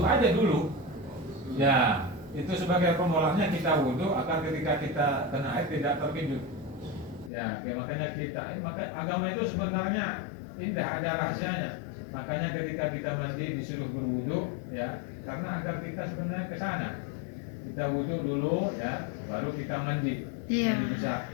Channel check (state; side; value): drops out; right; at 7.3 s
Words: aja dulu. Ya, itu sebagai permulaannya kita wudhu agar ketika kita kena air tidak terkejut. Ya, makanya maka agama itu sebenarnya indah, ada rahasianya. Makanya ketika kita mandi disuruh berwudhu, ya, karena agar kita sebenarnya ke sana. Kita wudhu dulu, ya, baru kita mandi. Iya. Mandi besar.